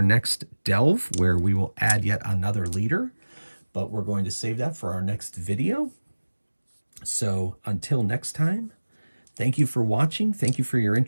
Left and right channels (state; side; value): inverted; both; correlation -1.00